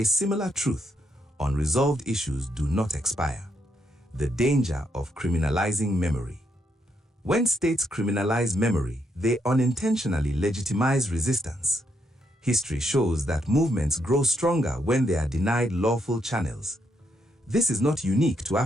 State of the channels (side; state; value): both; normal; correlation 0.77